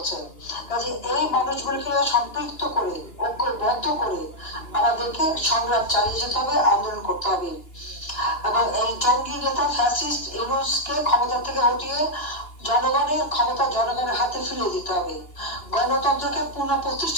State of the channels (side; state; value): right; late; 2.9 ms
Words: কাজে এই মানুষগুলিকে সম্পৃক্ত করে, ঐক্যবদ্ধ করে আমাদেরকে সংগ্রাম চালিয়ে যেতে হবে, আন্দোলন করতে হবে। এবং এই জঙ্গি নেতা ফ্যাসিস্ট ইউনূসকে ক্ষমতা থেকে হটিয়ে জনগণের ক্ষমতা জনগণের হাতে ফিরিয়ে দিতে হবে। গণতন্ত্রকে